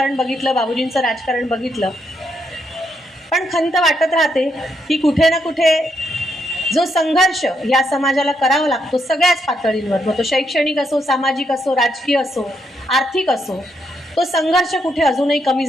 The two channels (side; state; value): both; normal; correlation 0.77